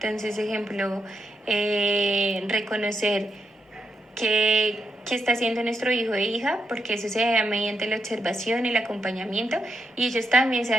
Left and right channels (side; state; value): both; normal; correlation 0.83